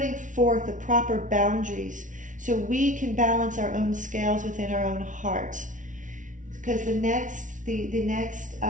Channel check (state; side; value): late; left; 0.37 ms